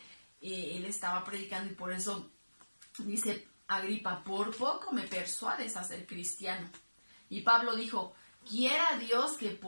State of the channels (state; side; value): inverted; both; correlation -1.00